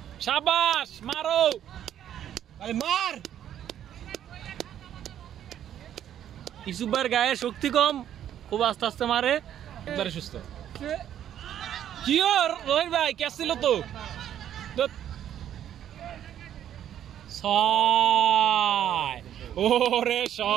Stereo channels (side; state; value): left; quieter; 10.5 dB